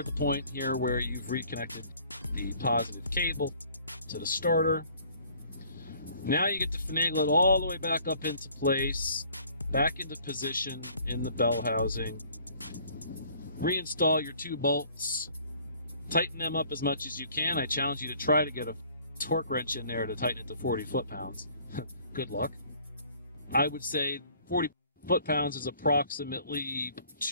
the point here where you've reconnected the positive cable to the starter. Now you get to finagle it all the way back up into place, back into position in the bell housing. Reinstall your two bolts, tighten them up as much as you can. I challenge you to try to get a torque wrench in there to tighten it to 40 foot-pounds. Good luck. I would say 40 foot-pounds is approximately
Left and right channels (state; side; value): inverted; both; correlation -0.56